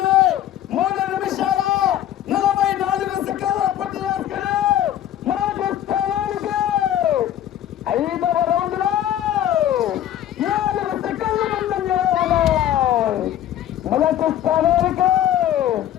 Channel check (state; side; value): quieter; right; 11.7 dB